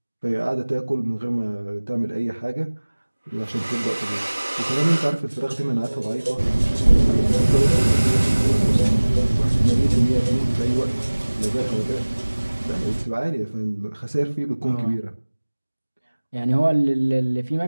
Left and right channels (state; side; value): inverted; both; correlation -1.00